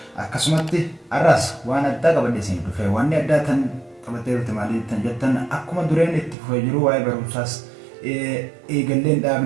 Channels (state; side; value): drops out; left; at 6.4 s